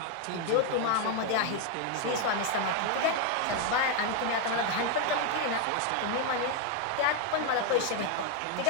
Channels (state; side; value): different; both; correlation 0.01